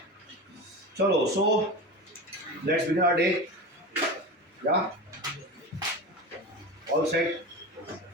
चलो, so let's begin our day. या ऑल सेट?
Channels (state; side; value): normal; both; correlation 0.27